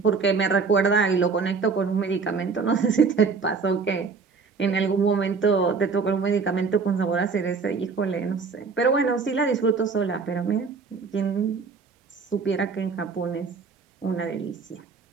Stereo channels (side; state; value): left; quieter; 4.9 dB